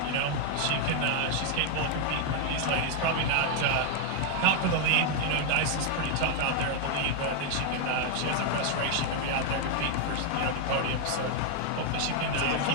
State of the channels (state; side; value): different; both; correlation 0.00